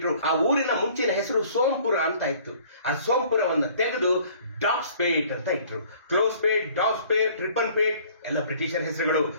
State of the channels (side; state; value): both; inverted; correlation -0.54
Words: ಆ ಊರಿನ ಮುಂಚಿನ ಹೆಸರು ಸೋಂಪುರ ಅಂತ ಇತ್ತು. ಆ ಸೋಂಪುರವನ್ನ ತೆಗೆದು ಡಾಬ್ಸ್ಪೇಟ್ ಅಂತ ಇಟ್ರು. ಕ್ಲೋಸ್ಪೇಟ್, ಡಾಬ್ಸ್ಪೇಟ್, ರಿಪನ್ಪೇಟ್ ಎಲ್ಲ ಬ್ರಿಟಿಷರ್ ಹೆಸರುಗಳು.